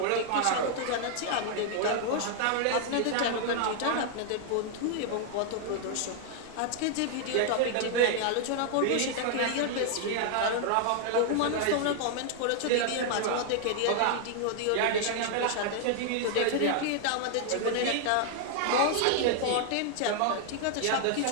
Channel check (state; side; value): different; both; correlation 0.00